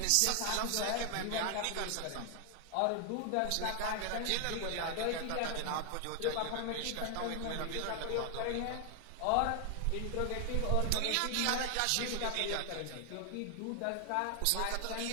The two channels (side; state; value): both; different; correlation 0.00